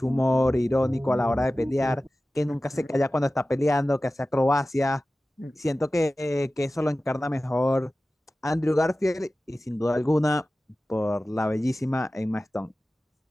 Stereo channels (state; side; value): normal; both; correlation 0.96